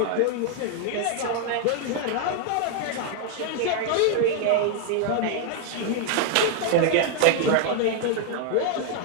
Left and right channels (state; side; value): different; both; correlation 0.00